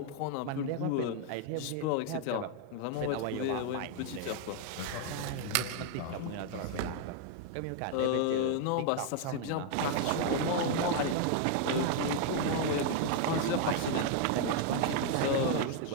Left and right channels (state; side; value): different; both; correlation 0.00